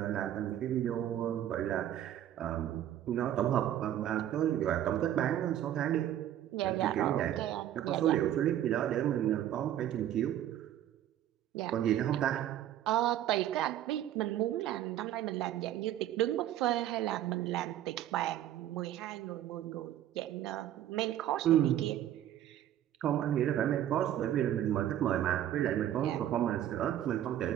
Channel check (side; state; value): left; quieter; 11.8 dB